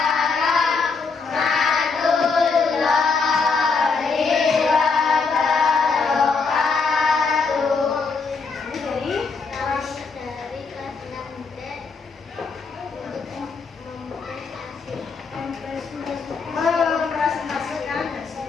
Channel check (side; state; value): right; quieter; 4.7 dB